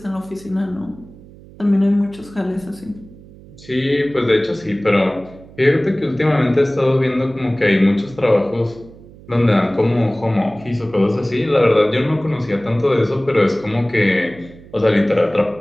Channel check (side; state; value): right; noise; hum, 21 dB below the sound